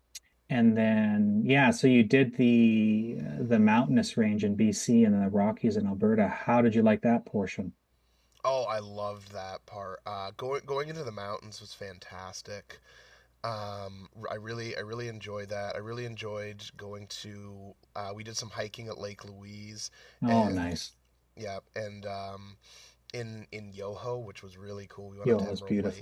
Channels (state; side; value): identical; both; correlation 1.00